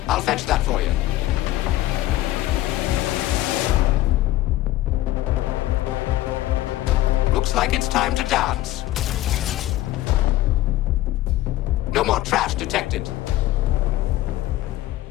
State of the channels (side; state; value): right; quieter; 15.5 dB